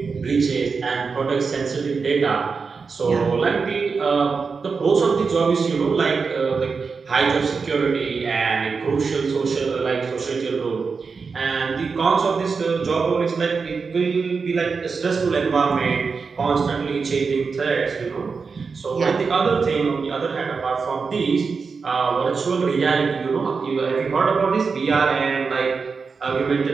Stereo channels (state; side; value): quieter; left; 5.0 dB